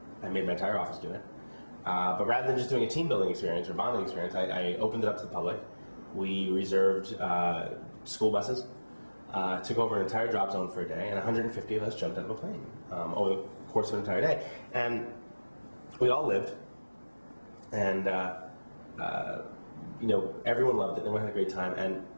made my entire office do it. But rather than just doing a team building experience or bonding experience, I opened it up to the public. We reserved school buses, took over an entire drop zone for a day, and 150 of us jumped out of a plane over the course of an entire day. And we all lived, and everyone loved it, everyone had a great time, and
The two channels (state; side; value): inverted; both; correlation -1.00